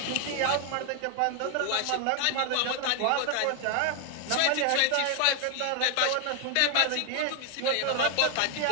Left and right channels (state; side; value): different; both; correlation 0.00